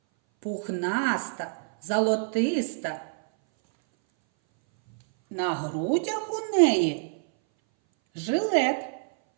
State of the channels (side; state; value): left; silent; 59 dB below the other